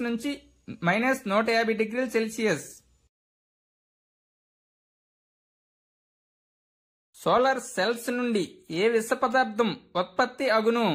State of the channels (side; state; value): both; identical; correlation 1.00